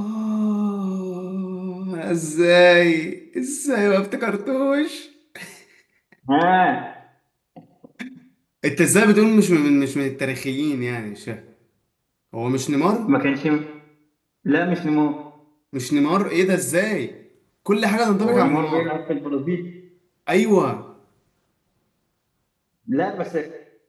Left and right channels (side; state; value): both; identical; correlation 1.00